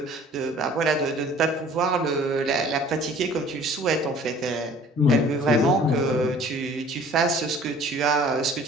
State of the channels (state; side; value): normal; both; correlation 0.51